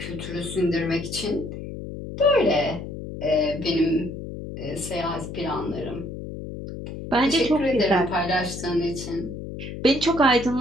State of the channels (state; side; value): noise; left; hum, 9 dB below the sound